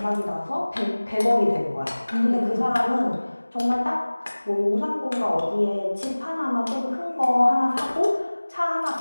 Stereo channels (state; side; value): inverted; both; correlation -1.00